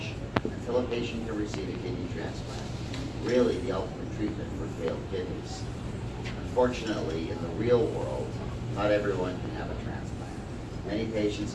until a patient can receive a kidney transplant, really the ultimate treatment for failed kidneys. Unfortunately, in the real world, not everyone can have a transplant. Many patients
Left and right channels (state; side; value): identical; both; correlation 1.00